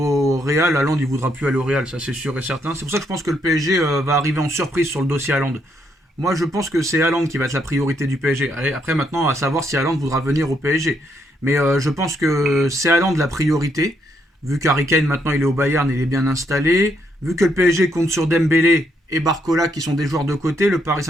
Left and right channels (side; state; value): both; normal; correlation 0.75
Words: Real, Haaland, il voudra plus aller au Real, ça c'est sûr et certain. C'est pour ça que je pense que le PSG va arriver en surprise sur le dossier Haaland. Moi, je pense que c'est Haaland qui va être la priorité du PSG. Après, maintenant, à savoir si Haaland voudra venir au PSG. Mais je pense que c'est Haaland la priorité. Vu qu'Harry Kane, maintenant, il est au Bayern, il est bien installé. Vu que le PSG compte sur Dembélé et Barcola, qui sont des joueurs de côté, le Paris